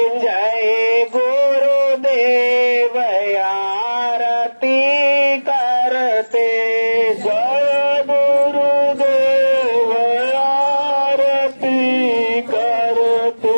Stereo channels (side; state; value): both; inverted; correlation -1.00